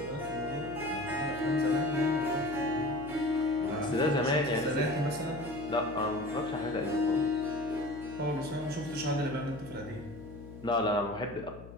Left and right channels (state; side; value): noise; left; hum, 16 dB below the sound